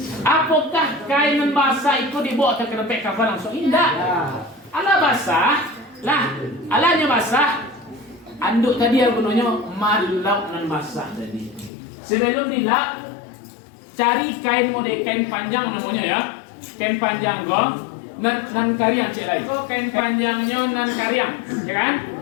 Apakah kain basah itu dibawa ke tempat kafan langsung? Tidak. Alah basah. Lah, alahnya basah. Anduk tadi yang gunanya malau nan basah tadi. Sebelum dilap, cari kain model kain panjang namanya ya. Kain panjang kok. Nan kariang cek lagi. Kok kain panjangnya nan kariang, ya kan?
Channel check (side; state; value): right; drops out; at 11.7 s